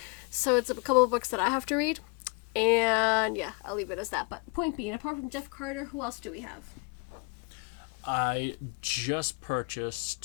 So it's a couple of books that I have to read. And yeah, I'll leave it as that. But point being, apart from Jeff Carter, who else do we have? I just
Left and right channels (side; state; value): right; quieter; 32.5 dB